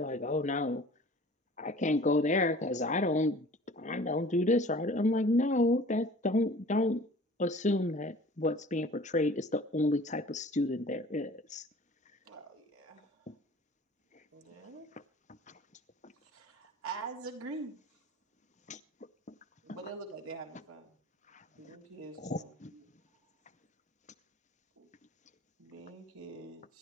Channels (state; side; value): normal; both; correlation 0.46